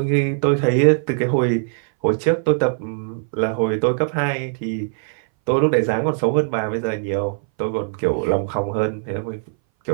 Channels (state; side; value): silent; left; 61 dB below the other